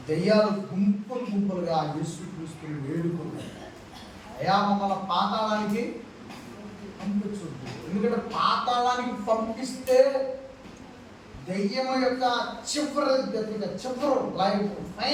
దెయ్యాలు గుంపులు గుంపులుగా యేసుక్రీస్తుని వేడుకుంటాయి. అయా మమ్మల్ని పాతాళానికి పంపించొద్దు. ఎందుకంటే పాతాళానికి పంపిస్తే దెయ్యం యొక్క చివరి లైఫ్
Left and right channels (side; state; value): both; identical; correlation 1.00